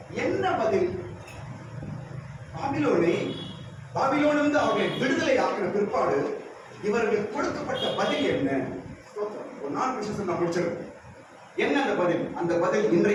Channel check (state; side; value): identical; both; correlation 1.00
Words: என்ன பதில்? பாபிலோனிலிருந்து அவர்களை விடுதலை ஆக்கின பிற்பாடு இவர்களுக்கு கொடுக்கப்பட்ட பதில் என்ன? ஒரு 4 விஷயம் நான் முடிச்சிருக்கேன். என்ன அந்த பதில்? அந்த பதில்